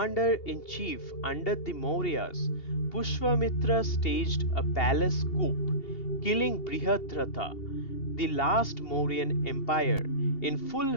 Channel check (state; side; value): late; right; 2.8 ms